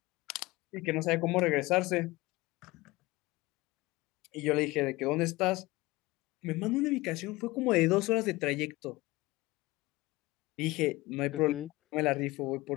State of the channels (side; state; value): right; quieter; 20.6 dB